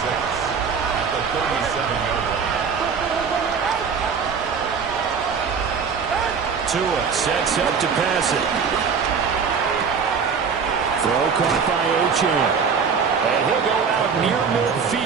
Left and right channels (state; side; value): quieter; left; 6.0 dB